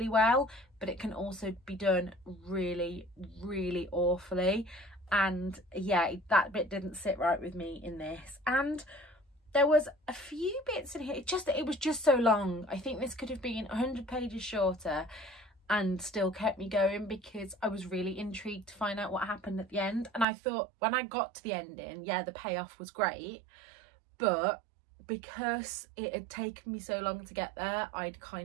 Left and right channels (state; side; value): drops out; left; at 20.2 s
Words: well, but it can also be done really, really awfully. And yeah, that bit didn't sit right with me in this. And there was a few bits in here, it was just so long. I think this could have been 100 pages shorter and still kept me going, because I was really intrigued to find out what happened at the end. And I thought when I got to the ending, yeah, the payoff was great, but because it had taken me so long to get there, I'd